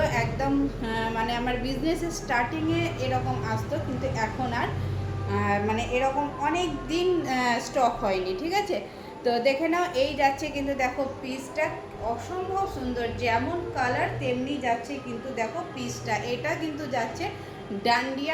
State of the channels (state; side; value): identical; both; correlation 1.00